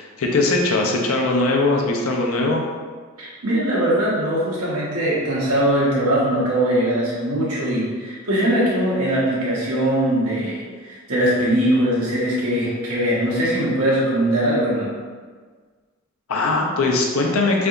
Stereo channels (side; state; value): both; normal; correlation 0.32